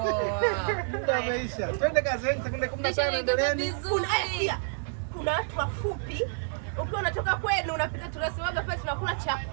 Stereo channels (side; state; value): left; silent; digital silence